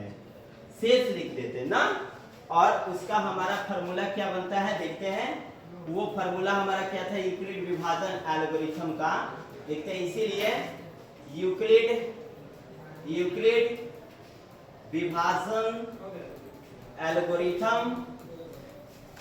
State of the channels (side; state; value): both; identical; correlation 1.00